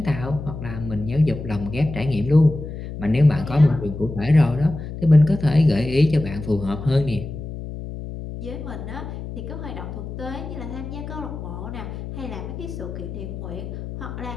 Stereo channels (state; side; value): noise; left; hum, 9 dB below the sound